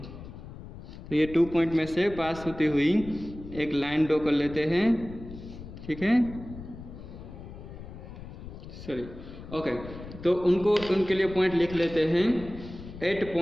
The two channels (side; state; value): left; noise; rumble, 13 dB below the sound